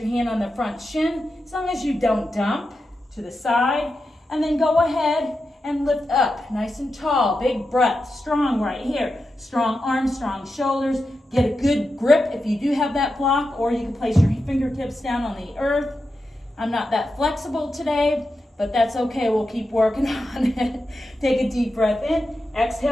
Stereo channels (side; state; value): both; normal; correlation 0.89